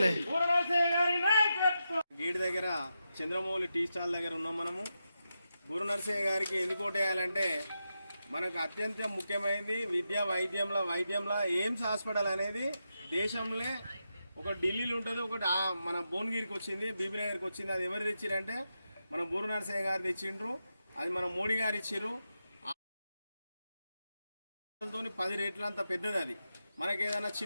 గేట్ దగ్గర చంద్రమౌళి టీ స్టాల్ దగ్గర ఉన్నాం మనము. బూర నరసయ్య గారికి ఎందుకు ఓటేయాలంటే మనకు అత్యంత ముఖ్యమైనది విద్య వైద్యంలో ఎయిమ్స్ హాస్పిటల్ అనేది దేశంలో ఒక ఢిల్లీలో ఉంటుంది, ఒకటి మన భువనగిరికి వచ్చింది, బీబీనగర్కి వచ్చింది. అది ఎవరు తెచ్చిరంటే మన బూర నరసయ్య గారు తెచ్చిండ్రు. అది మన మోడీ గారు ఇచ్చిర్రు. 10 రేట్ల అంత పెద్దది. అది మనకి ఏదైనా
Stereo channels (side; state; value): both; inverted; correlation -0.88